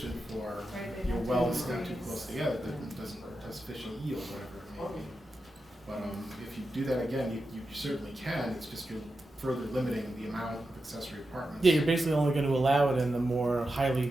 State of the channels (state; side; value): normal; both; correlation 0.90